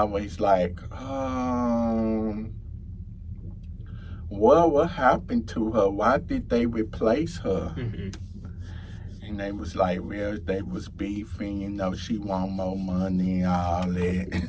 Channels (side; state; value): both; identical; correlation 1.00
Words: what happened to her? Why did they replace her? And they was like, well, they was beefing, she want more money and all